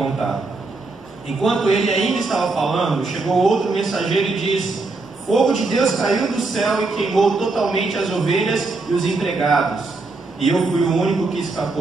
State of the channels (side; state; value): left; quieter; 3.5 dB